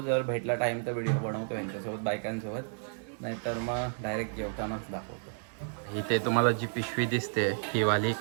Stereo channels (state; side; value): silent; left; 57 dB below the other